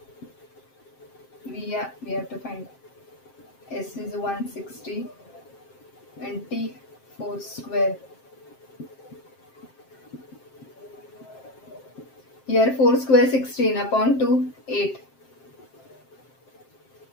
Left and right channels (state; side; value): late; right; 7.6 ms